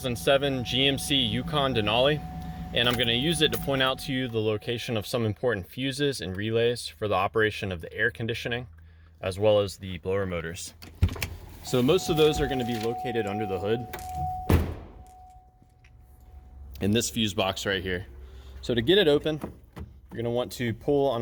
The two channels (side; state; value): both; identical; correlation 1.00